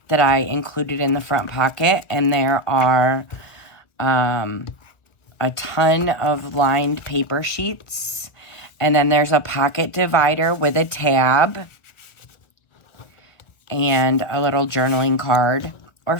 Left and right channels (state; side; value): late; right; 1.3 ms